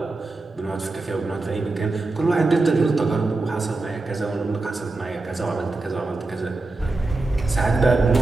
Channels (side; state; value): left; quieter; 3.3 dB